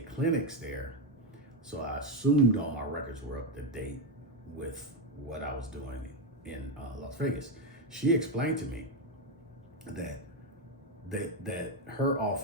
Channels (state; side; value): normal; both; correlation 0.07